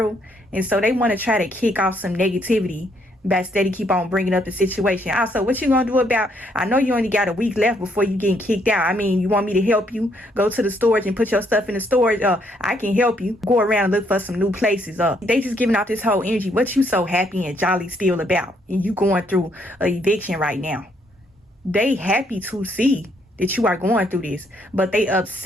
And so they want to try to kick off some negativity by steady keep on bringing up the situation. Also, what you gonna do about, I know you only got a week left before you getting kicked out. I mean, you want me to help you go to the storage and put your stuff in the storage? I can help you go around and look for some new places. They just giving out this whole energy. What you so happy and jolly still about? And you going through a eviction right now. They happy to see that you are going through this, but they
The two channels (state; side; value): normal; both; correlation 0.71